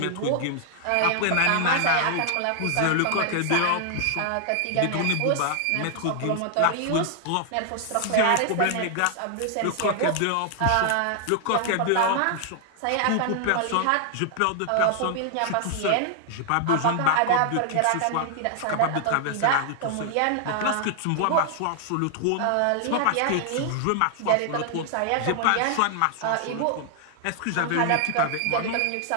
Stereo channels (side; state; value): both; different; correlation 0.00